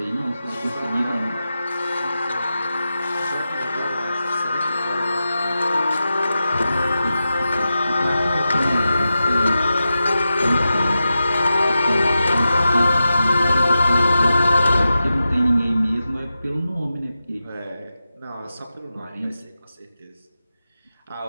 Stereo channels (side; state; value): both; inverted; correlation -0.92